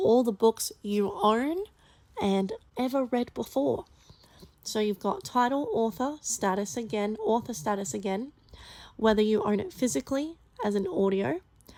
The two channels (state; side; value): identical; both; correlation 1.00